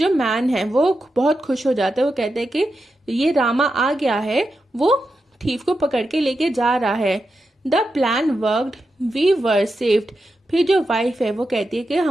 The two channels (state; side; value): normal; both; correlation 0.88